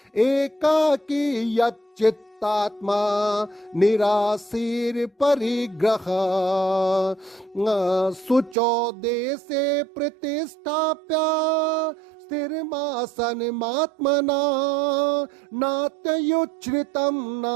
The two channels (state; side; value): drops out; left; at 8.6 s